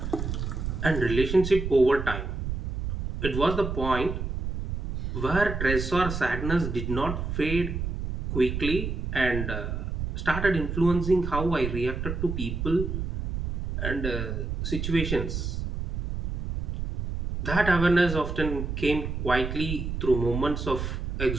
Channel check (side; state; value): right; noise; rumble, 3 dB below the sound